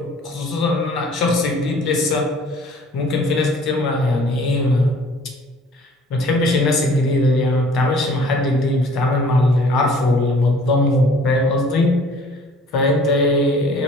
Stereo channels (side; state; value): both; normal; correlation 0.53